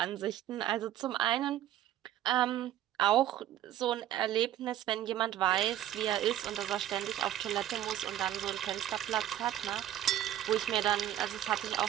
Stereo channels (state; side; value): quieter; left; 12.2 dB